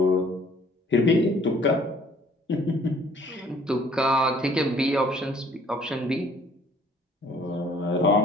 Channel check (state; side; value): normal; both; correlation 0.57